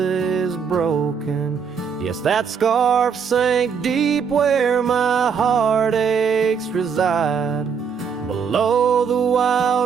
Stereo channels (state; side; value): quieter; left; 6.5 dB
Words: broken. Yes, that scarf sank deep where my heartaches reside, below the